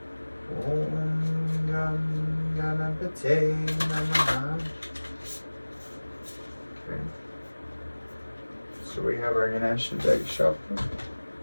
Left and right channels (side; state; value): both; inverted; correlation -1.00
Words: Om Gam Ganapate Namaha. Okay. So we have our Ganesha deck shuffle.